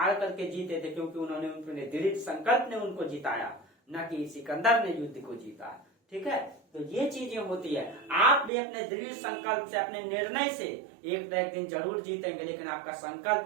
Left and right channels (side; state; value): left; drops out; at 8.5 s